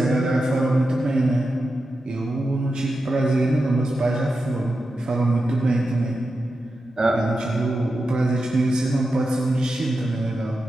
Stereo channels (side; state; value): both; normal; correlation 0.90